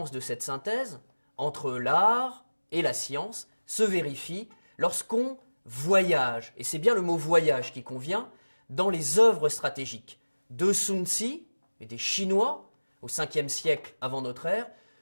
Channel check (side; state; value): both; inverted; correlation -1.00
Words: de cette synthèse entre l'art et la science se vérifie lorsqu'on voyage, et c'est bien le mot voyage qui convient, dans les œuvres stratégiques de Sun Tzu et des Chinois au 5e siècle avant notre ère,